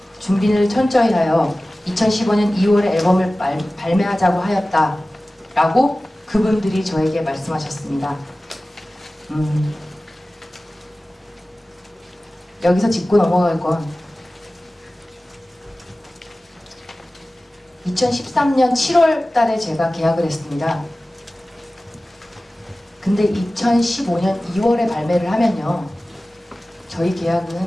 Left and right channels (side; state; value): both; normal; correlation 0.97